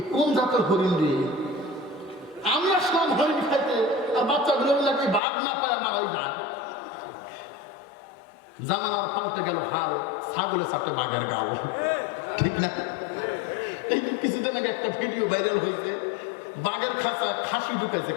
কোন জাতের হরিণ রে? আমি আসলাম হরিণ খাইতে, আর বাচ্চাগুলো নাকি বাঘ না পায় আমার ওই বাঘ। জানালার পাল্টে গেল হাল, ছাগলে চাপে বাঘের গাল। ঠিক না? এই কিছুদিন আগে একটা ভিডিও ভাইরাল হয়েছে, বাঘের খাঁচা খাসি ঢুকেছে,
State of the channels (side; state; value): right; drops out; at 5.2 s